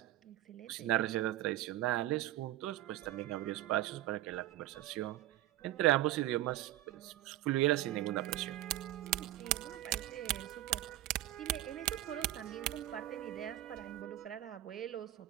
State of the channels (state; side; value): quieter; left; 14.9 dB